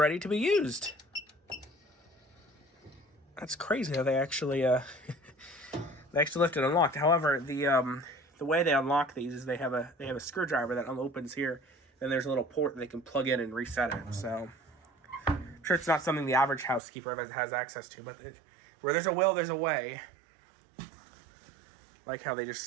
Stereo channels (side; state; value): left; drops out; at 16.8 s